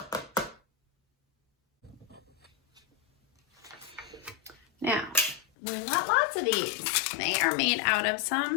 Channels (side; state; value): right; drops out; at 5.5 s